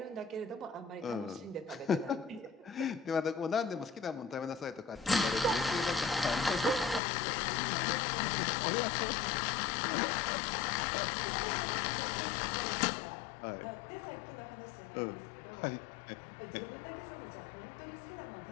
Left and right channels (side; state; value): right; drops out; at 7.0 s